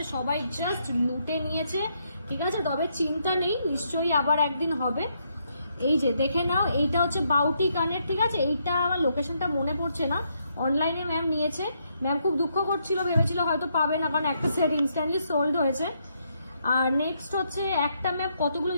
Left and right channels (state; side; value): inverted; both; correlation -0.76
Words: সবাই জাস্ট লুটে নিয়েছে, ঠিক আছে? তবে চিন্তা নেই, নিশ্চয়ই আবার একদিন হবে। এই যে দেখে নাও, এইটা হচ্ছে বাউটি কানের, ঠিক আছে? এইটা আমার লোকেশনটা মনে পড়ছে না, অনলাইনে ম্যাম নিয়েছে। ম্যাম খুব দুঃখ করছিল, ভেবেছিল হয়তো পাবে না, কারণ একটা সেট ইনস্ট্যান্টলি সোল্ড হয়েছে। আর নেক্সট হচ্ছে একটা ম্যাম কতগুলো